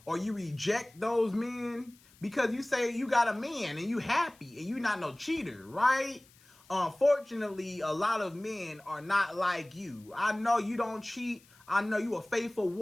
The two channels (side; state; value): left; noise; hiss, 28 dB below the sound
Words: or you reject those men because you say you got a man and you happy and you not no cheater, right? Unfortunately, a lot of men are not like you. I know you don't cheat. I know you a faithful